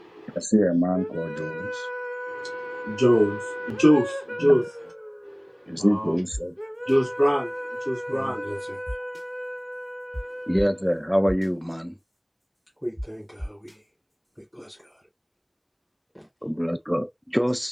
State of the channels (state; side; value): identical; both; correlation 1.00